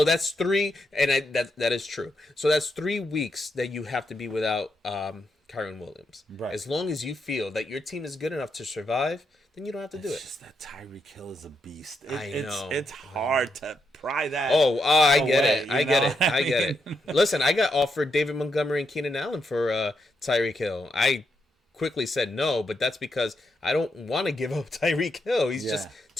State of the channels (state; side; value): normal; both; correlation 0.81